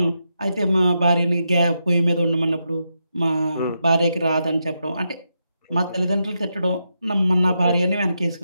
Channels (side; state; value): both; inverted; correlation -0.84